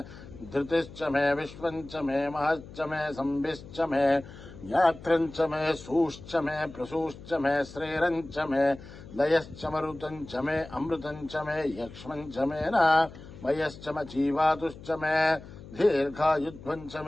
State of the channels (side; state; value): left; noise; hum, 16 dB below the sound